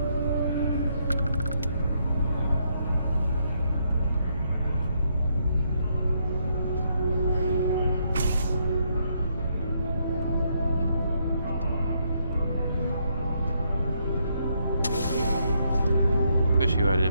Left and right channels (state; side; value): inverted; both; correlation -0.75